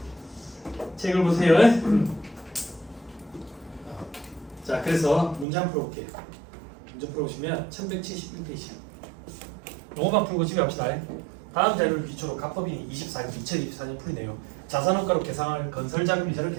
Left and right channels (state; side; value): drops out; left; at 5.5 s